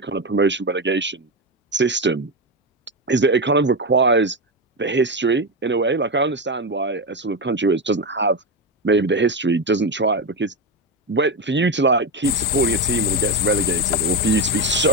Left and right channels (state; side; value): normal; both; correlation 0.12